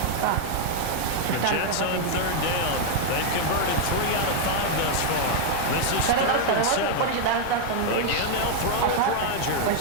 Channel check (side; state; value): both; different; correlation 0.00